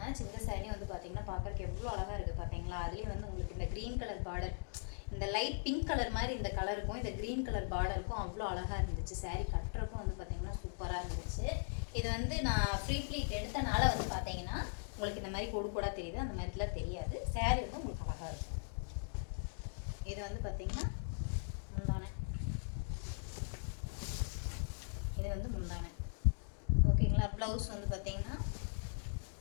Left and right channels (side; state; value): right; silent; digital silence